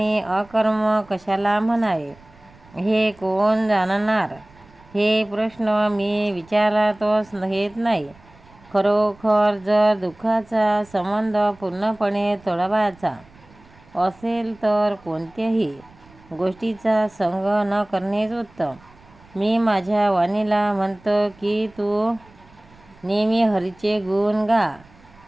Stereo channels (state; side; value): noise; right; rumble, 26 dB below the sound